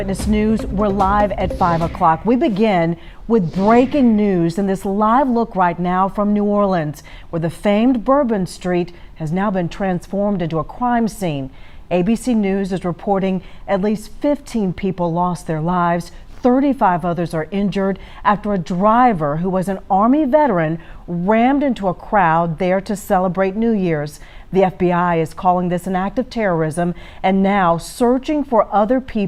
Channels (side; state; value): both; identical; correlation 1.00